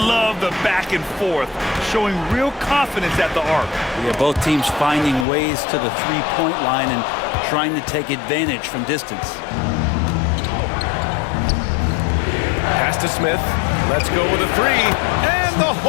the back and forth, showing real confidence at the arc. Yeah, both teams finding ways to the three-point line and trying to take advantage from distance. Pass to Smith. Let's go with a three. And the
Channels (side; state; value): right; drops out; at 5.2 s